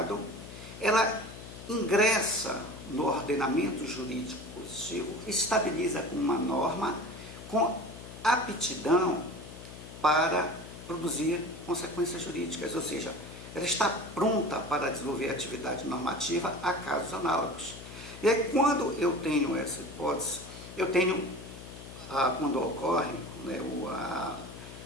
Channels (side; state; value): left; noise; hum, 14 dB below the sound